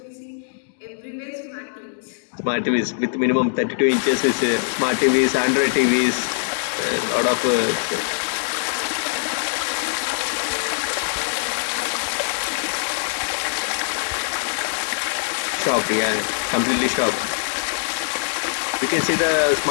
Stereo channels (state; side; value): silent; right; digital silence